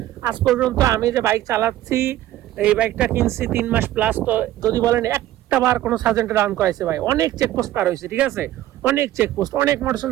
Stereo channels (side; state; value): left; quieter; 14.1 dB